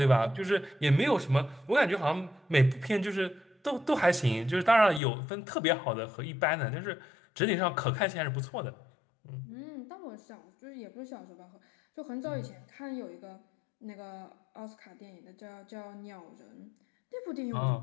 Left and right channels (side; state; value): right; drops out; at 5.0 s